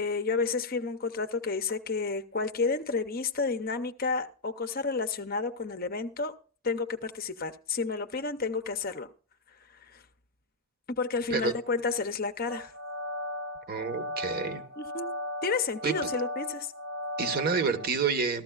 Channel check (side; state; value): both; normal; correlation -0.02